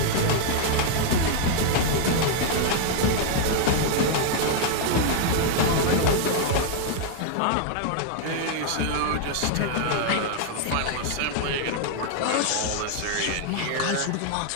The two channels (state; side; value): different; both; correlation 0.00